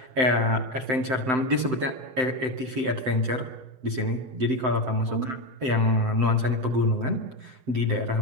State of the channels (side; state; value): left; late; 7.8 ms